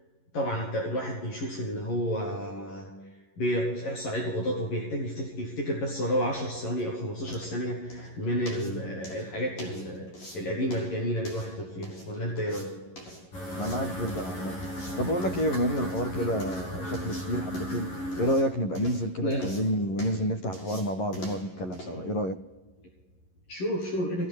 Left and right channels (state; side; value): late; right; 11 ms